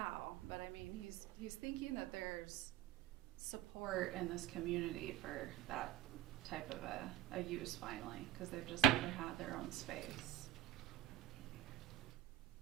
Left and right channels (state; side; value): quieter; left; 11.6 dB